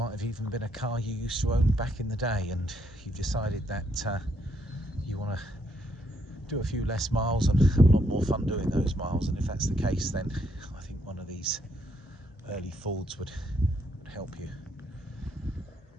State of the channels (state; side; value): normal; both; correlation 0.74